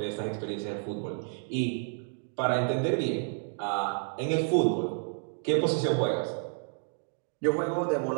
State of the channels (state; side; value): silent; left; 58 dB below the other